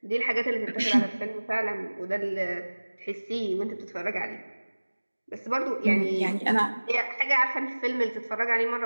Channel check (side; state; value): both; inverted; correlation -1.00